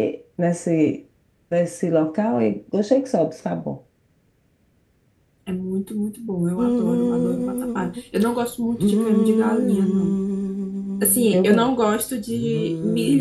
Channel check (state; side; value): identical; both; correlation 1.00